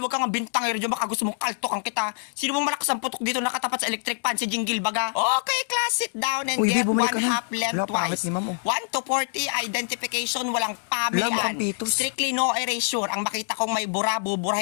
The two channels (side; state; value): right; silent; digital silence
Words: kang bintangero dyan. Baka gusto mong kaltokan kita. Sino mong malakas ang putok dito nakatapat sa electric fan? Si Jingle baga. Okay, class, sit down and get one half left twice. 1 to 40, identification, walang pamian. Strictly no erasure. Ang makita kong may bura,